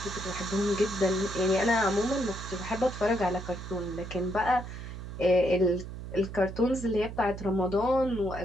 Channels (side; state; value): right; noise; hum, 10 dB below the sound